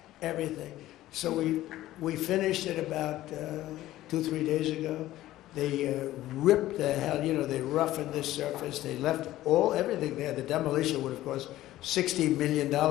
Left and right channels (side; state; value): right; quieter; 15.1 dB